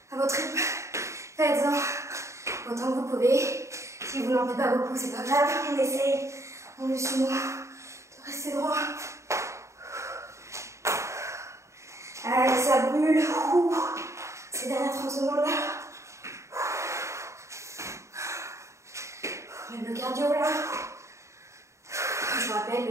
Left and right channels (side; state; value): left; late; 0.14 ms